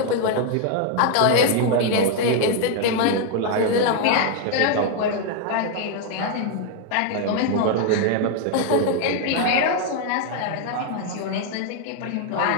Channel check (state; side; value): different; both; correlation 0.00